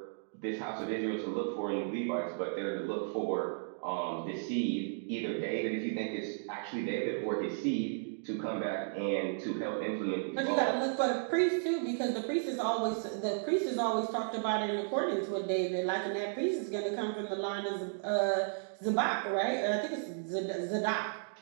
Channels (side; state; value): left; silent; digital silence